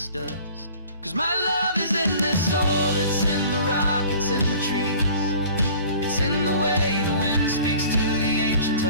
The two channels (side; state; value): both; inverted; correlation -0.47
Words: dust. 'Cause my love is in this soil, it's in the rock, it's in the trees. It's in the way the wind speaks to the ancient